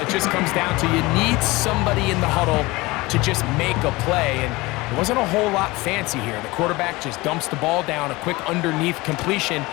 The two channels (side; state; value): right; quieter; 21.8 dB